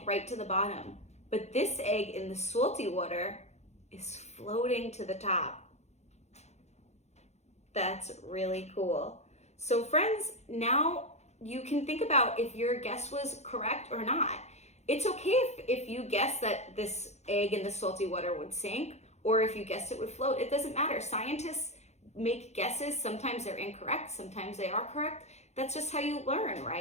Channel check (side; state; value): right; late; 0.32 ms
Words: right to the bottom, but this egg in the salty water is floating to the top. That's really cool. So friends, now you can think about if your guess was correct or not. It's okay if you guess that this egg in the salty water would sink, or if you guessed it would float. It doesn't matter. Scientists make guesses. Sometimes they're incorrect, sometimes they are correct. That's just how you learn,